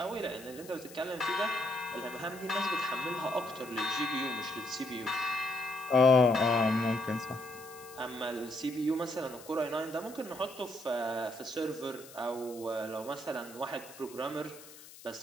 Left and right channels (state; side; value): noise; left; hiss, 18 dB below the sound